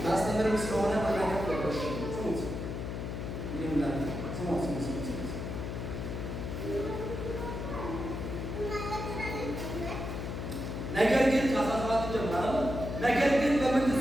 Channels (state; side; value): noise; left; hum, 5 dB below the sound